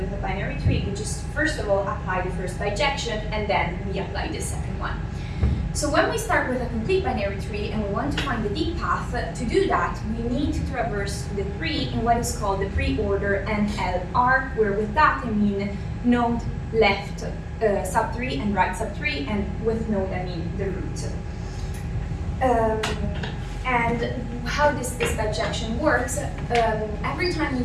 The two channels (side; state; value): both; identical; correlation 1.00